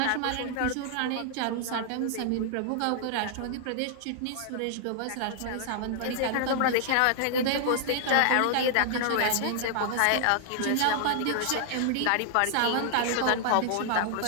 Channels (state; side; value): different; both; correlation 0.00